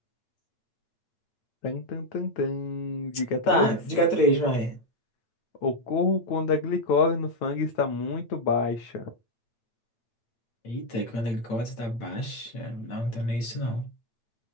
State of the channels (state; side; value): late; right; 8.8 ms